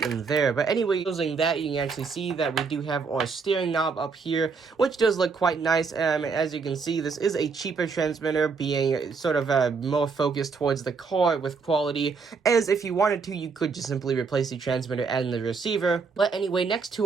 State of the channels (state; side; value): quieter; left; 5.0 dB